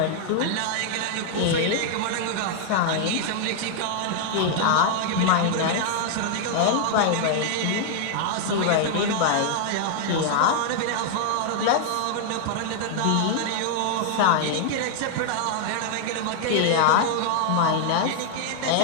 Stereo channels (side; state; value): both; different; correlation 0.00